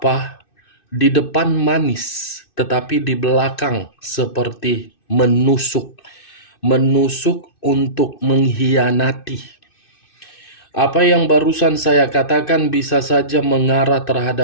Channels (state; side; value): late; right; 2.6 ms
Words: Di depan manis, tetapi di belakang seperti menusuk. Menusuk untuk mengkhianati. Apa yang barusan saya katakan bisa saja mengarah